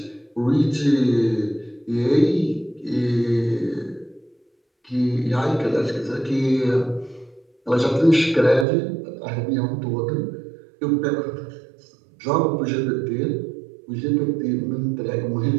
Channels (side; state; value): left; drops out; at 8.7 s